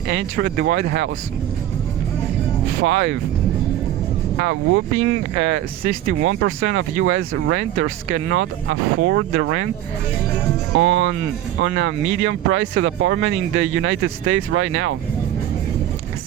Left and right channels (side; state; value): left; quieter; 12.4 dB